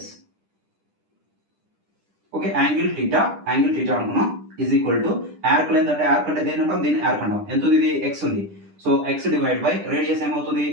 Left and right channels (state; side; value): late; left; 10 ms